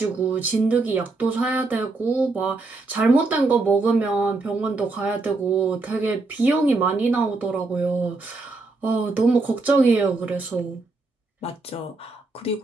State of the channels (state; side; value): quieter; left; 3.5 dB